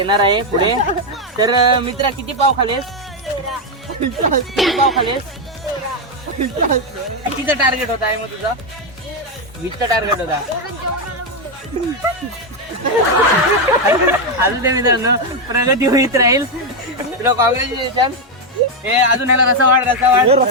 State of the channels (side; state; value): both; normal; correlation 0.04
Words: आहे पुढे. तर मित्रा किती पाव खालेस? किती पाव खालेस? कितीचा टार्गेट होता आहे मग तुझा? 20चा टार्गेट होता. अजून ते मित्रांनो प्रगती होईत राहील. तुला कॉंग्रॅच्युलेशन. हे अजून याला रसा वाढ